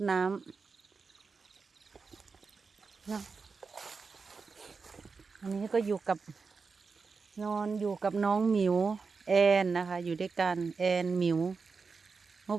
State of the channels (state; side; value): quieter; left; 4.8 dB